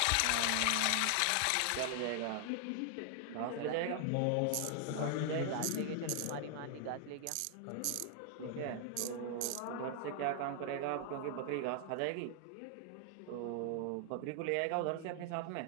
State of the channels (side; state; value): both; different; correlation 0.00